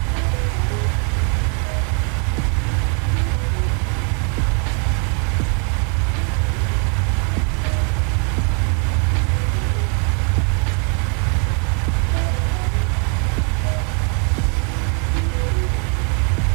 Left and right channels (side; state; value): left; quieter; 39.3 dB